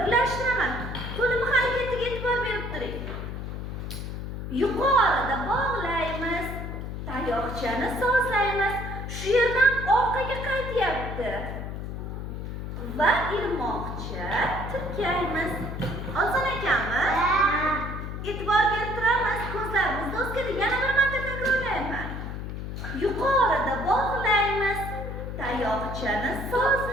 Qo'limi harakatiga e'tibor berib turing. Yuqorida bog'laymiz, tayoqchani sozlaymiz. Shu yerdan orqaga qaytyapti. Va ilmoqcha tirkaymiz. Oson ekanmi? E'tibor berib turamiz. Ko'zlarimizni o'zgardi. Yana bir marta takrorlayman. Yuqorida bog'laymiz, tayoqchani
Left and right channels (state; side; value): noise; left; hum, 6 dB below the sound